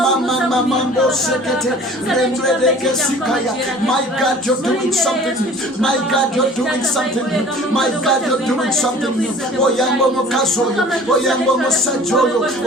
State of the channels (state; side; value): normal; both; correlation 0.47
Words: sekete. Rembretekesikaya. My God, you're doing something new. My God, you're doing something new. My God, you're doing something new. Oyambo mukazoyo. Oyambo musajoyo.